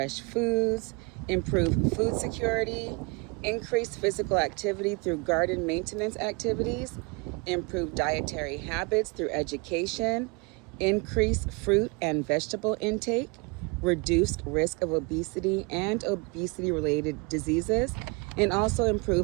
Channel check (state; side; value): quieter; left; 30.0 dB